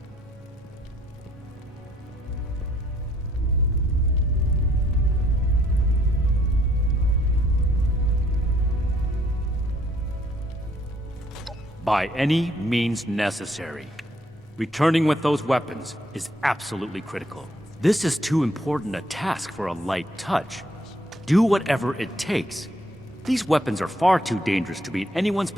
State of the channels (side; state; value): both; normal; correlation 0.66